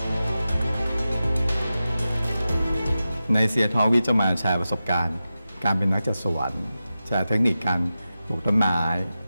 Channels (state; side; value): inverted; both; correlation -0.93